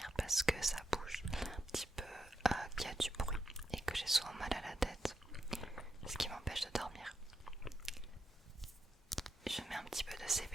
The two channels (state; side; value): normal; both; correlation 0.85